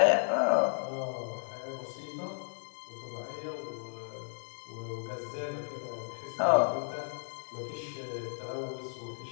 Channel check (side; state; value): right; silent; 55 dB below the other